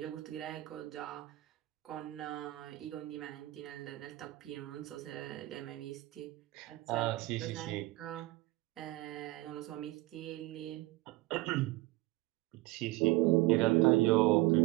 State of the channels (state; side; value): quieter; left; 19.5 dB